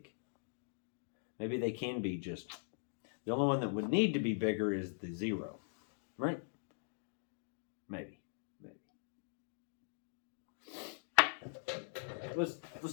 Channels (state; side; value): silent; right; digital silence